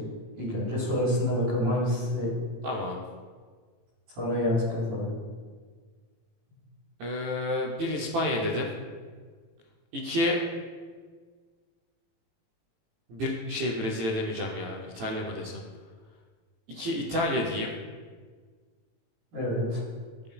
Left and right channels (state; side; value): late; left; 18 ms